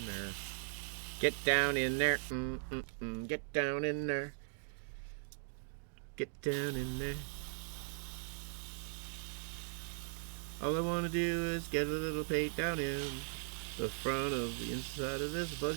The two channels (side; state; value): left; silent; digital silence